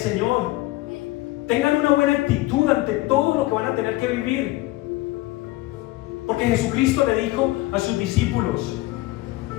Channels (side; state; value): right; quieter; 19.0 dB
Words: Tengan una buena actitud ante todo lo que van a tener que vivir, porque Jesucristo le dijo a sus discípulos: